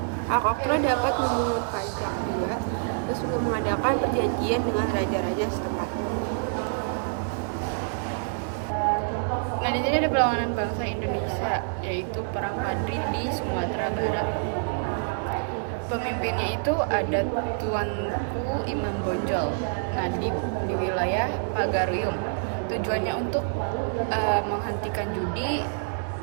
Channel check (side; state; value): left; silent; digital silence